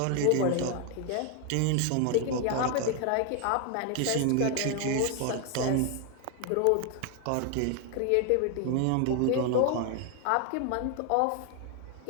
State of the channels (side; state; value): both; different; correlation 0.01